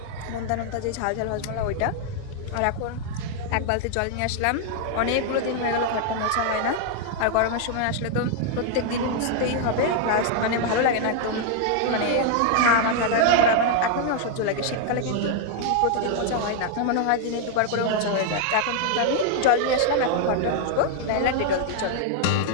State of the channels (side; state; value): both; different; correlation 0.00